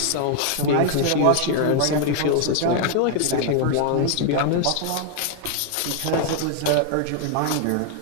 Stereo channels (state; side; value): different; both; correlation 0.00